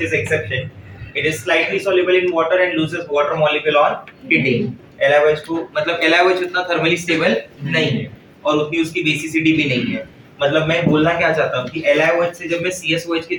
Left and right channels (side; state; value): both; identical; correlation 1.00